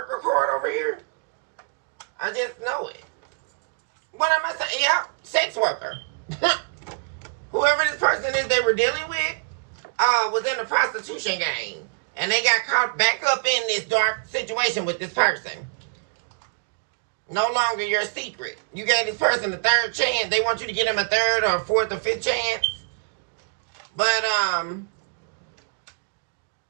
card over here? I just know it. What am I saying? Yeah, sex worker. Whoever this person is they were dealing with was in the prostitution game. And they got caught back up in this dark situation with this person. No longer your secret. You gave this person a third chance. They want you to give them a third or fourth or fifth chance. But,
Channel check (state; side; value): quieter; left; 37.3 dB